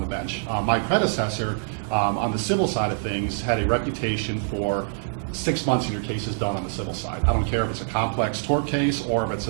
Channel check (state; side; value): silent; left; digital silence